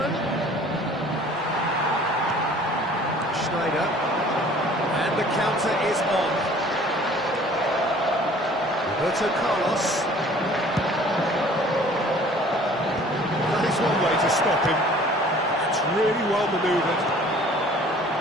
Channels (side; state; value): both; normal; correlation 0.51